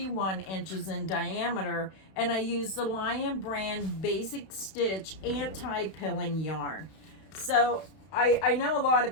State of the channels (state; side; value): late; right; 31 ms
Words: inches in diameter, and I use the Lion Brand Basic Stitch anti-pilling yarn. So I know a lot